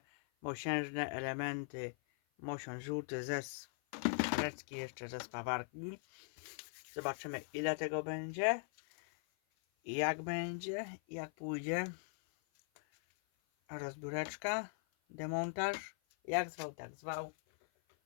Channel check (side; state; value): right; silent; 51 dB below the other